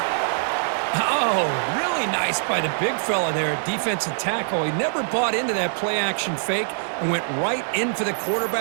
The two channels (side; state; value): left; silent; 63 dB below the other